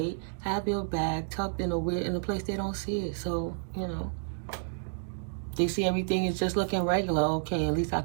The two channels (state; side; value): silent; left; digital silence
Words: Have your bag tucked in a place they don't see it. So, you know, they see everything is just looking regular. Okay, at least I